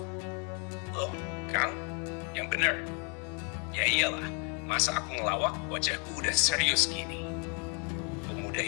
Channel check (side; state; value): right; quieter; 37.5 dB